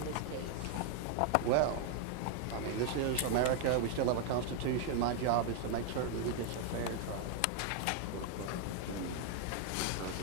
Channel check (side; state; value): both; different; correlation 0.00